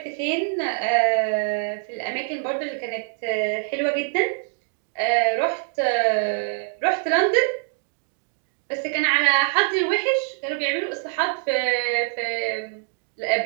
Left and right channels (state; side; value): silent; left; digital silence